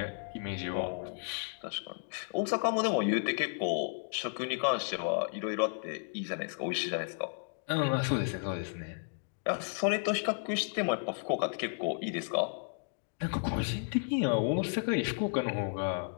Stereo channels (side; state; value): right; silent; digital silence